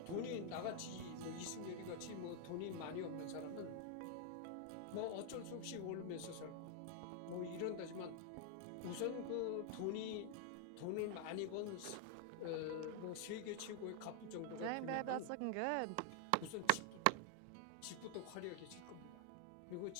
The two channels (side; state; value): both; different; correlation 0.00